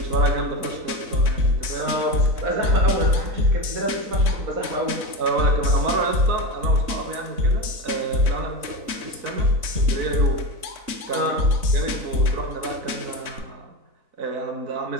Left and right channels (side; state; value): left; late; 4.0 ms